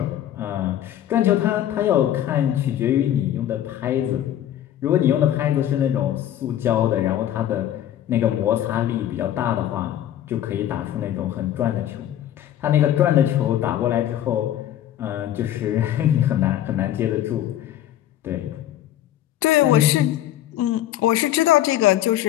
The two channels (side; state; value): right; quieter; 11.9 dB